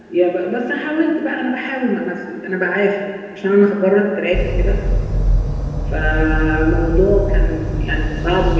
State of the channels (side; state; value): both; identical; correlation 1.00